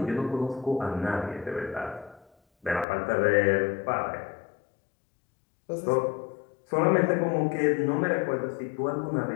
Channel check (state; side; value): drops out; right; at 2.9 s